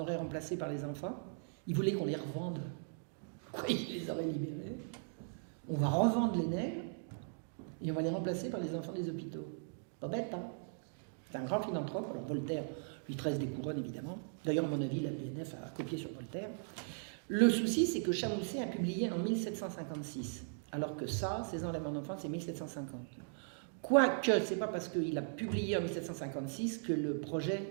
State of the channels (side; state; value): left; silent; digital silence